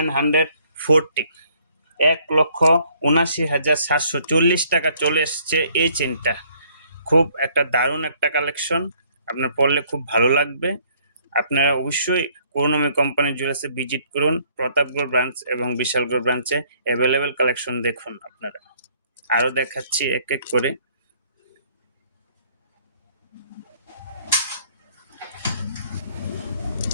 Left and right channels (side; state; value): both; inverted; correlation -0.63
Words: 1,79,740 টাকা চলে এসছে এই চেনটা। খুব একটা দারুণ একটা কালেকশন, আপনার পরলে খুব ভালো লাগবে। আপনারা অবশ্যই করুণাময়ী কোম্পানি জুয়েলার্সে ভিজিট করুন। প্রতাপগড় ব্রাঞ্চ এবং বিশালগড় ব্রাঞ্চে অ্যাভেলেবেল কালেকশন দেখুন আপনারা। আরও দেখাচ্ছি এক এক করে।